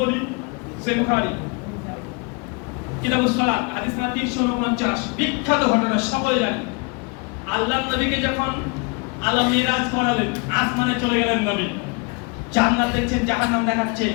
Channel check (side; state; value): right; quieter; 31.2 dB